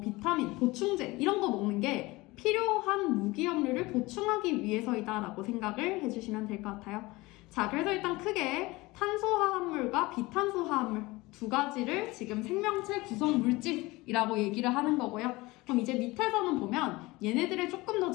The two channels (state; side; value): quieter; right; 21.5 dB